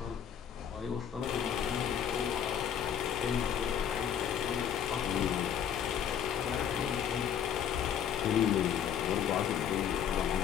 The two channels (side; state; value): right; quieter; 8.8 dB